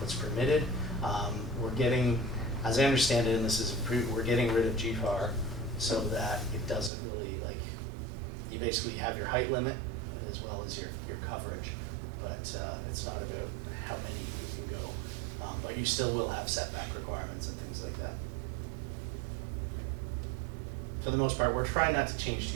permitted. We're getting, as I understand it, and this is, we're getting rid of GFAR so that it doesn't really, like, you basically have your height limit as well as your coverage, but it's not about how many you can go. But you still will have setback requirements and things like that. For the most part, we're trying not to change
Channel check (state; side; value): drops out; left; at 6.9 s